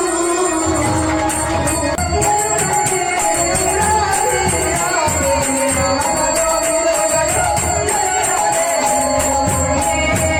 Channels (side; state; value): both; identical; correlation 1.00